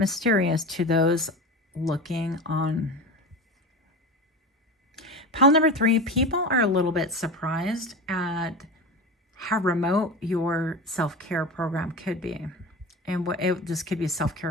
to those looking on. Pile number 3, people are a little bit surprised at how remote your self-care program could be. And this could be a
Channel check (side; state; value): both; normal; correlation 0.28